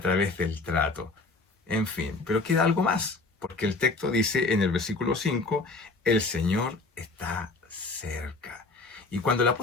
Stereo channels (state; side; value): quieter; right; 3.6 dB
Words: del trato. En fin, pero queda algo más, porque el texto dice en el versículo 5, el Señor está cerca. Y cuando el